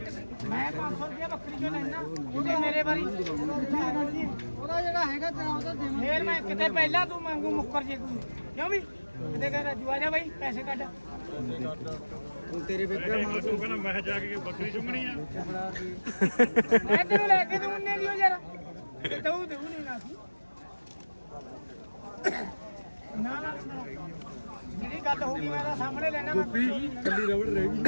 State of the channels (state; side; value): inverted; both; correlation -1.00